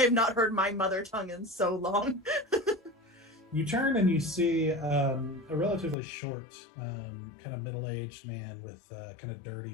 not heard my mother tongue in so long. You turn and you see a relatively short, kind of middle-aged man with kind of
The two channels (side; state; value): right; drops out; at 6.0 s